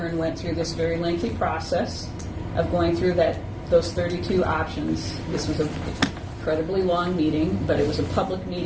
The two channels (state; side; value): identical; both; correlation 1.00